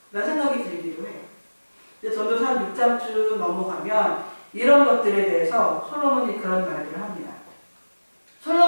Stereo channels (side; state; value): both; inverted; correlation -1.00